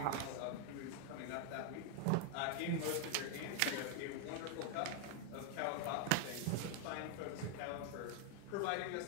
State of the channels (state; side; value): different; both; correlation 0.00